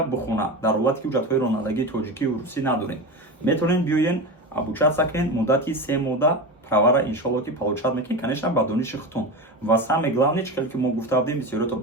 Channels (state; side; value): normal; both; correlation 0.24